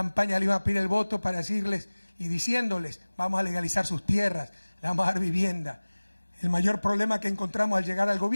le iban a pedir el voto para decirles y diciéndoles: vamos a legalizar sus tierras, le vamos a dar vivienda? El mayor problema que encontramos al llegar al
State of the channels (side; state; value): both; inverted; correlation -1.00